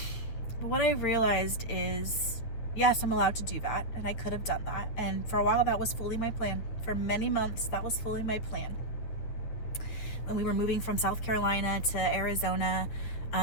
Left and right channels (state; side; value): late; right; 9.6 ms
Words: But what I realized is, yes, I'm allowed to do that, and I could have done that, and for a while that was fully my plan. For many months that was fully my plan. When we were moving from South Carolina to Arizona,